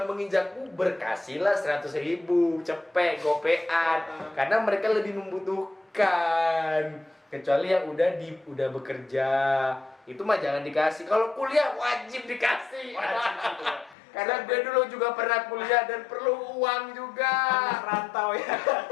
menginjak berkasihlah 100.000 cepet gopean karena mereka lebih membutuhkan. Kecuali yang udah bekerja itu mah jangan dikasih. Kalau kuliah wajib dikasih. Karena gue dulu juga pernah kuliah dan perlu uang juga. Anak rantau ya.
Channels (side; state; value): right; drops out; at 14.0 s